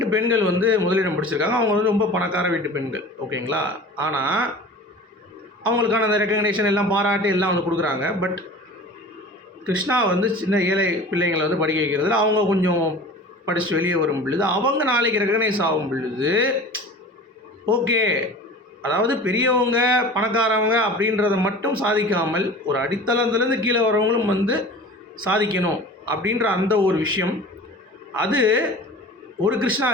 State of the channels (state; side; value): normal; both; correlation 0.39